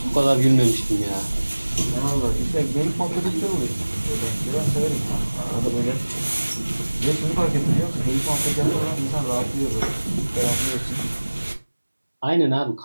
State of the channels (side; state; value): both; inverted; correlation -1.00